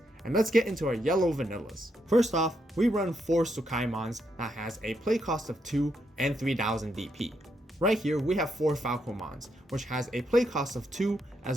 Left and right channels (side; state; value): both; normal; correlation 0.79